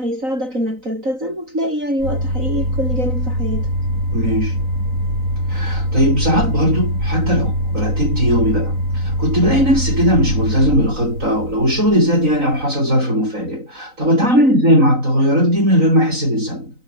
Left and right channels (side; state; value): left; late; 3.9 ms